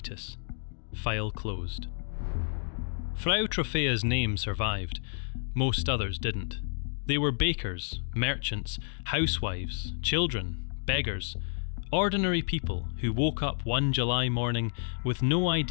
File closed. Frau Trofea's name survived. Most others didn't. They were bakers, merchants, housewives, children, beggars, ordinary people who woke up one July morning with no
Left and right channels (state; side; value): silent; right; digital silence